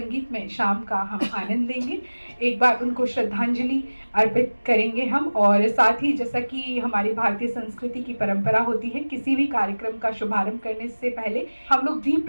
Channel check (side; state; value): both; inverted; correlation -1.00